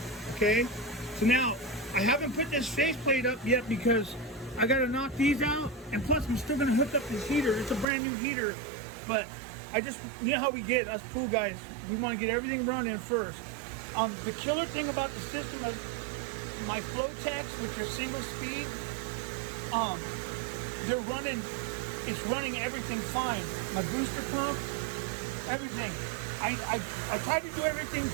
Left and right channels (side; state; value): left; drops out; at 7.9 s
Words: okay? So now, I haven't put this faceplate up yet because I gotta knock these out, and plus I'm still gonna hook up this heater. It's a brand new heater, but you know how we get, us pool guys, we wanna get everything running first. The killer thing about the system is my flow techs, which are single speed, it's running everything fine. My booster pump, everything. I tried to do everything